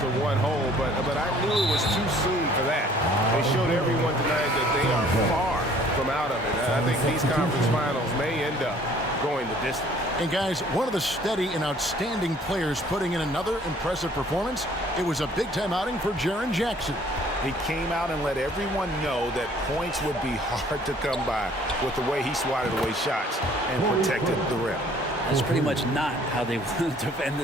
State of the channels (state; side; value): normal; both; correlation 0.56